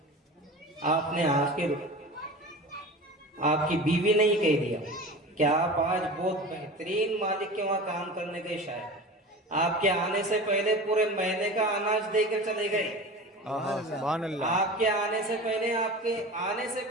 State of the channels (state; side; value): normal; both; correlation 0.33